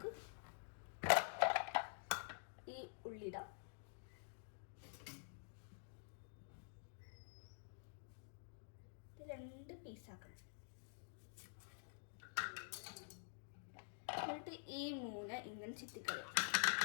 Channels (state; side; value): silent; right; digital silence